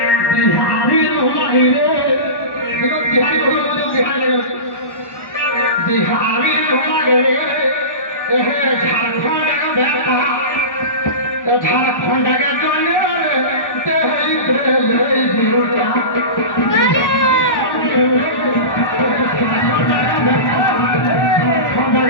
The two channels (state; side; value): late; right; 1.1 ms